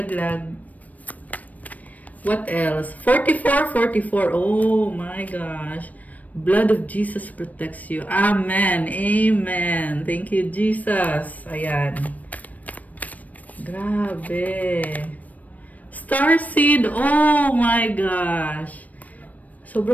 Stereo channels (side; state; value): right; late; 0.074 ms